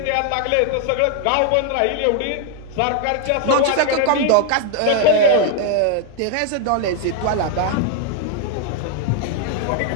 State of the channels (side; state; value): both; different; correlation 0.00